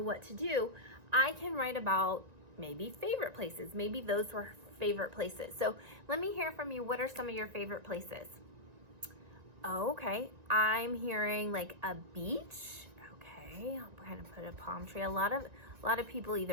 to do, I can write about maybe favorite places. Maybe those were favorite places. So let me hear from you. What are some of your favorite places? Oh, okay. I'm hearing like a beach. Okay, I'll kind of put a palm tree. A lot of people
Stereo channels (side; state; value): left; late; 1.9 ms